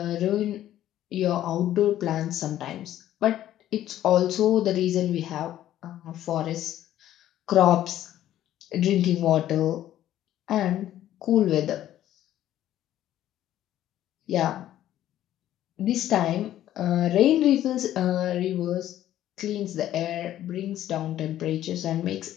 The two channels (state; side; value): quieter; right; 12.6 dB